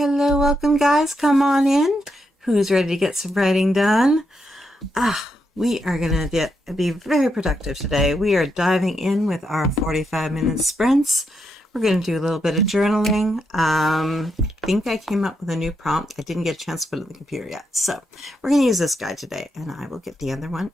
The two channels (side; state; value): both; normal; correlation 0.82